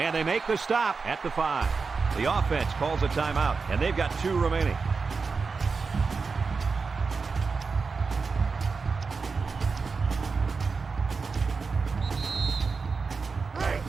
they make the stop at the 5. The offense calls a timeout, and they've got 2 remaining.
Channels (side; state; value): left; quieter; 4.7 dB